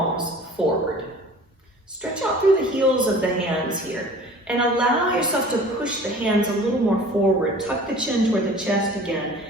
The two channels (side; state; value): both; normal; correlation 0.45